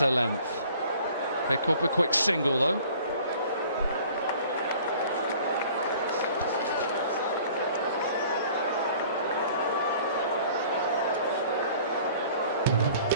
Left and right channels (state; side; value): inverted; both; correlation -0.51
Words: length. Pick up a quick single though.